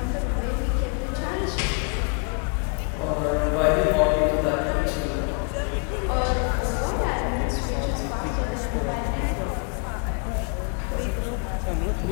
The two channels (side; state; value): right; quieter; 38.1 dB